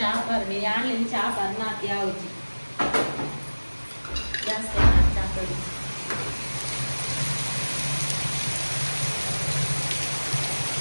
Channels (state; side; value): inverted; both; correlation -1.00